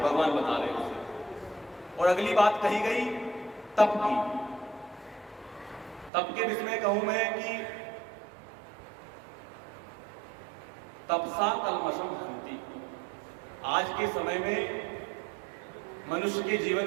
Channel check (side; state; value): left; drops out; at 6.1 s